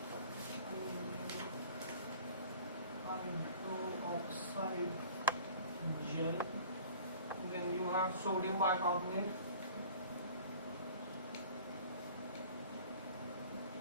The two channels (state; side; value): inverted; both; correlation -0.46